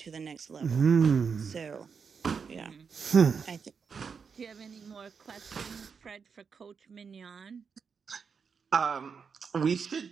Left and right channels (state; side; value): quieter; left; 5.9 dB